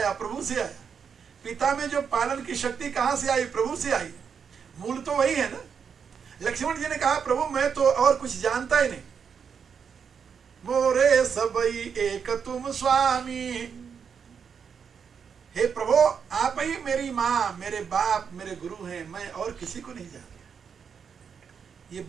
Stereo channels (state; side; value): quieter; left; 6.7 dB